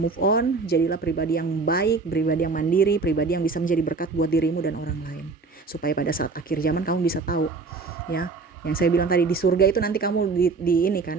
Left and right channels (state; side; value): quieter; left; 4.2 dB